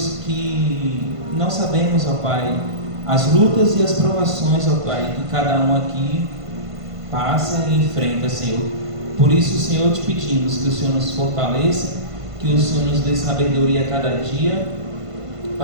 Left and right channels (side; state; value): left; late; 1.5 ms